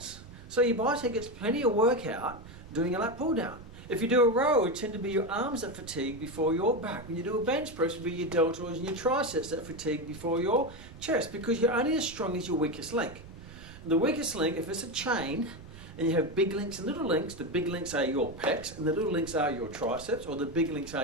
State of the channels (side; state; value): right; noise; rumble, 20 dB below the sound